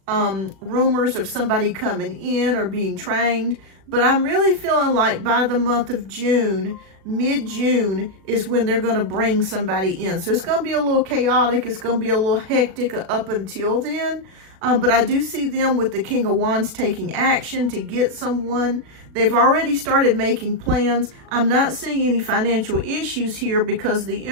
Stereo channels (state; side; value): late; left; 36 ms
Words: rumors of somebody coming in or being trained. But I'm really feeling like by the month of June, mid-June, is when they're going to bring somebody in. So it's going to be a little chaotic. It's going to be a little hectic up until then. But I do see them with the King of Wands taking action to get someone. They've already started making plans. I'm not seeing any financial issues here because the